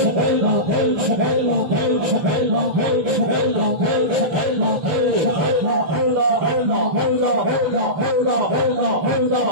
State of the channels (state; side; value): late; left; 6.8 ms